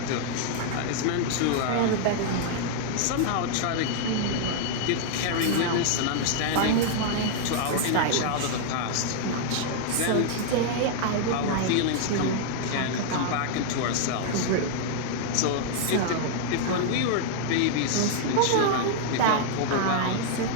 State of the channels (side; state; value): both; different; correlation -0.01